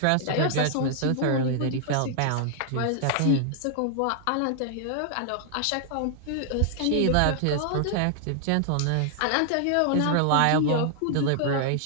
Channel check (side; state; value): both; different; correlation 0.00